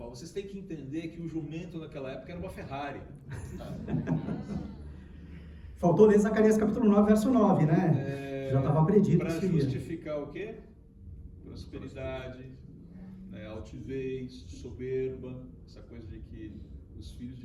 Vocês têm que entender que o jumento naquela época era uma Ferrari. Faltou ler Zacarias capítulo 9, verso 9, né? Já estava predito. Para justificar o quê? Prosperidade, né? Altivez, soberba, essa coisa de que os filhos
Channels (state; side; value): identical; both; correlation 1.00